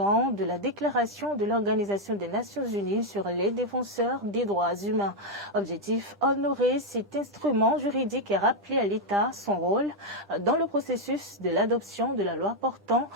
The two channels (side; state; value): both; normal; correlation 0.02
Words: de la déclaration de l'Organisation des Nations Unies sur les défenseurs des droits humains. Objectif, honorer cet instrument juridique et rappeler à l'État son rôle dans le processus de l'adoption de la loi portant